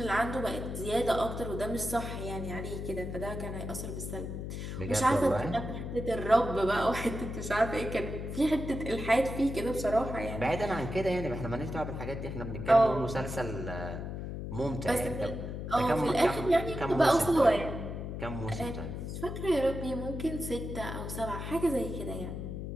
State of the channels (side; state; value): left; noise; hum, 6 dB below the sound